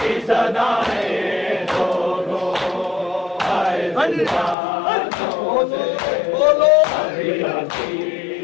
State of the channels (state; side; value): drops out; right; at 4.5 s